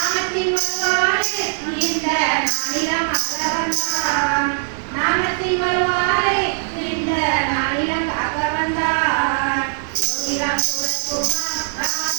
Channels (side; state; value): left; silent; 57 dB below the other